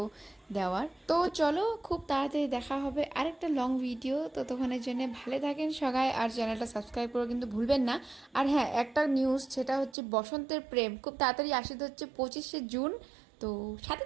দেওয়ার। তো চলো খুব তাড়াতাড়ি দেখা হবে আরেকটা লং ভিডিও। ততক্ষণের জন্য ভালো থাকেন সবাই, আর চ্যানেলটা সাবস্ক্রাইব করে কিন্তু ভুলবেন না। আর হ্যাঁ একটা নিউজ, সেটা হচ্ছে বসন্তের প্রেম খুব তাড়াতাড়ি আসতে হচ্ছে 25শে জুন। তো সাথে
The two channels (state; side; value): drops out; left; at 10.0 s